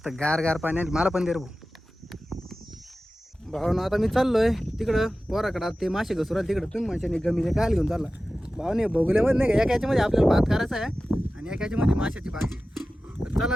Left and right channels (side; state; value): both; normal; correlation 0.95